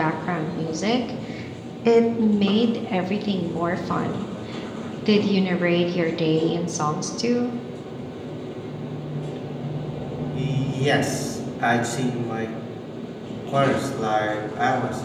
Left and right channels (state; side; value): identical; both; correlation 1.00